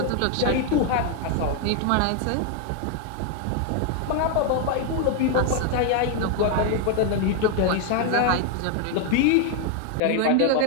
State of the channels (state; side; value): different; both; correlation 0.01